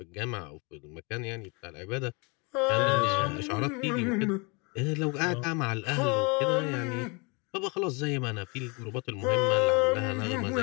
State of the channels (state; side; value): quieter; right; 30.5 dB